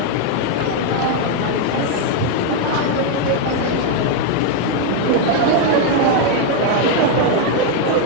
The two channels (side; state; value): both; different; correlation 0.01